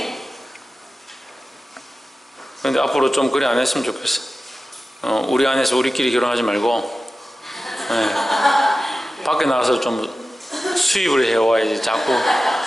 그런데 앞으로 좀 그래 안 했으면 좋겠어. 우리 안에서 우리끼리 결혼하지 말고 밖에 나가서 좀 수입을 해와야지. 자꾸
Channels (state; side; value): normal; both; correlation 0.94